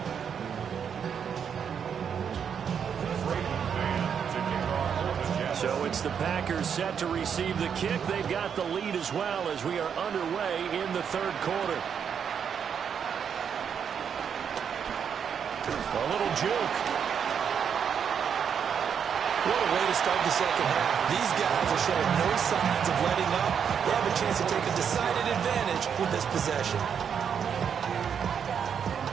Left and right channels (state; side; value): quieter; left; 7.5 dB